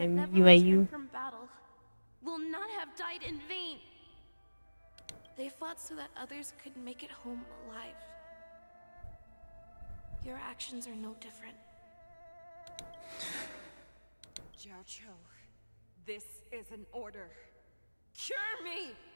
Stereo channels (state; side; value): inverted; both; correlation -1.00